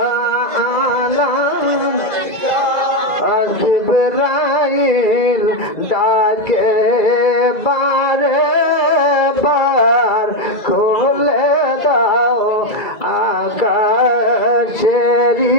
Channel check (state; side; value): late; right; 2.0 ms